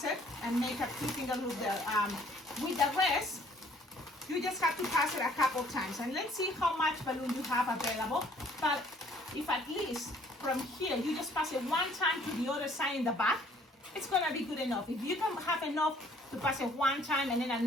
it, and make a 2-finger loop there. With the rest, you just have to pass it a couple times, and let's see how much balloon you have available. But if at least from here you just pass it one time to the other side in the back, it's gonna be good enough. If you can have enough to pass it one time and then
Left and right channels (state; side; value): normal; both; correlation 0.59